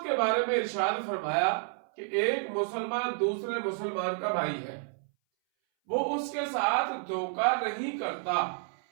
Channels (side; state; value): left; silent; 58 dB below the other